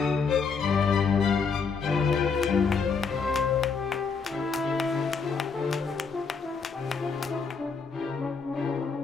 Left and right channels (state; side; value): quieter; right; 5.3 dB